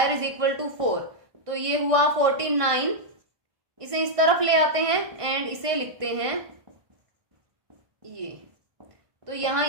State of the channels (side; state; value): left; late; 1.5 ms